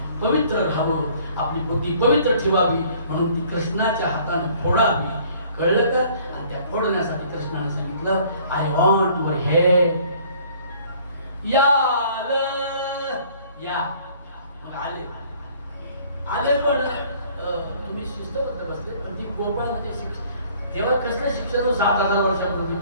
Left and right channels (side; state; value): both; inverted; correlation -0.56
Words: पवित्र राहावं, आपली बुद्धी पवित्र ठेवावी. म्हणून ती कृष्णाच्या हाताने फोडावी. कळलं का? आणि त्या फोडण्यासाठी कृष्णाने सांगितलं आय वॉन्ट युअर हेड. या मग आले पण तुम्ही शिस्तबद्ध बसले. पण ती गोपाळामध्ये शिक्षण तेव्हा कसलं शिक्षण हो? 7,000 वर्षापूर्वी